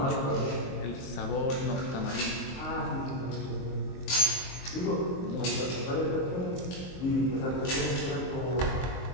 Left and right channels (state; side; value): late; right; 22 ms